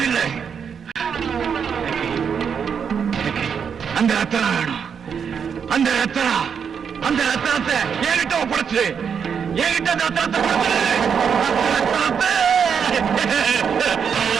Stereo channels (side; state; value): left; quieter; 7.0 dB